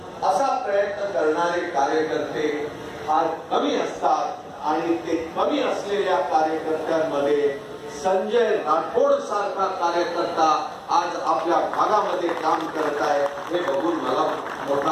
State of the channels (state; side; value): identical; both; correlation 1.00